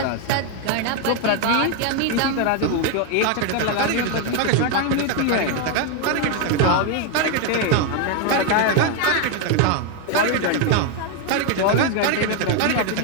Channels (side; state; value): both; different; correlation 0.01